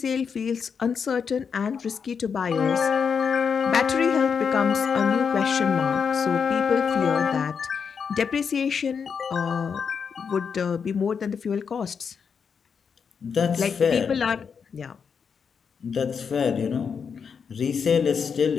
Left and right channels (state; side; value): quieter; right; 6.4 dB